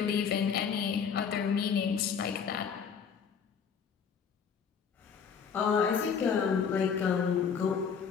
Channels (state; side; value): quieter; right; 6.7 dB